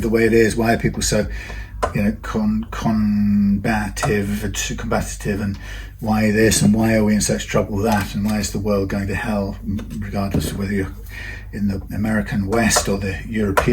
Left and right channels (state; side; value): identical; both; correlation 1.00